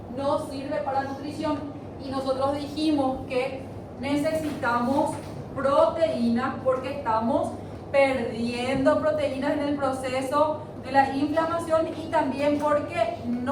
No sirve para nutrición. Y nosotros dijimos que necesitamos proteínas porque estamos perdiendo proteínas en el proceso de la inflamación y también porque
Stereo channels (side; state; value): both; identical; correlation 1.00